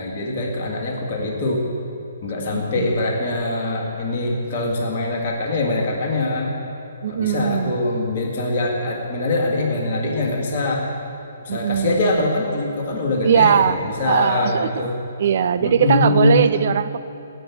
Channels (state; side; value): inverted; both; correlation -0.62